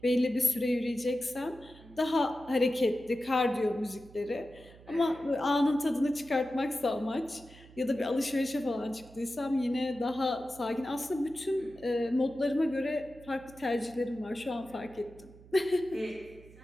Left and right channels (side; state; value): right; noise; hum, 21 dB below the sound